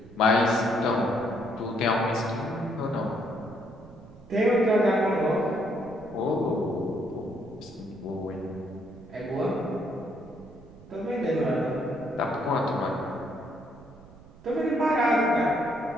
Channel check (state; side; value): noise; right; rumble, 20 dB below the sound